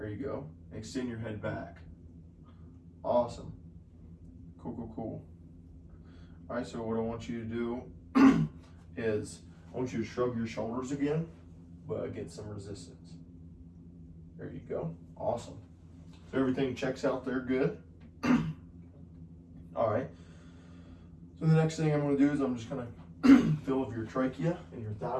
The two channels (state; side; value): identical; both; correlation 1.00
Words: you go. Extend your head back. Awesome. Cool, cool, cool. All right, so what I want you to do is I want you to shrug your shoulders again, but get some resistance. There you go. Awesome. So everything checks out there good. All right. So the next thing I'm going to do is I'm just going to feel of your trachea and your